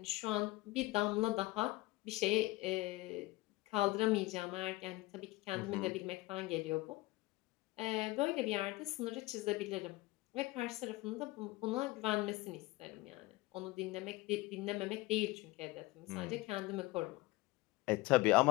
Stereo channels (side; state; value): right; quieter; 20.7 dB